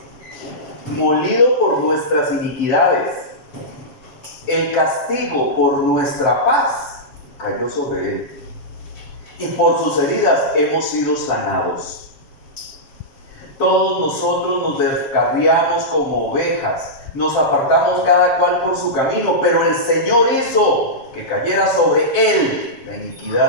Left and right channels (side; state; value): right; late; 7.4 ms